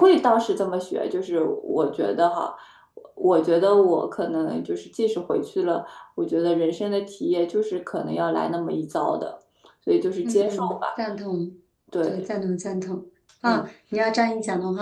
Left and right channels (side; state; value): both; identical; correlation 1.00